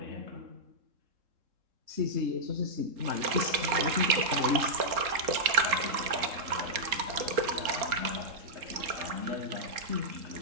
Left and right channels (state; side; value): late; left; 3.7 ms